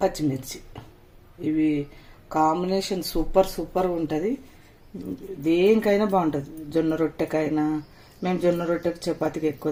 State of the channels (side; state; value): both; identical; correlation 1.00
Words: పచ్చిమిర్చి, ఇవి కాంబినేషన్ సూపర్ ఉంటుంది. దేనికైనా బాగుంటుంది. జొన్న రొట్టెకైనా, మేము జొన్న రొట్టెకి చపాతీకి ఎక్కువ